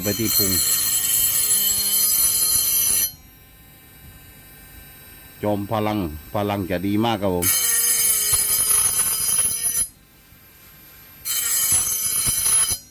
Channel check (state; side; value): identical; both; correlation 1.00